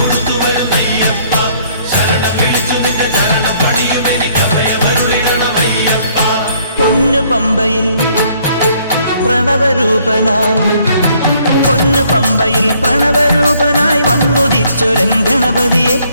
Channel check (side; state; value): both; inverted; correlation -0.64